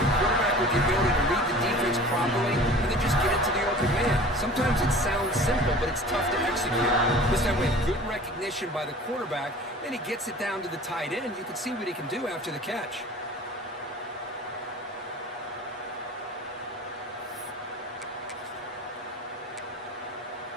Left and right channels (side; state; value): both; normal; correlation 0.43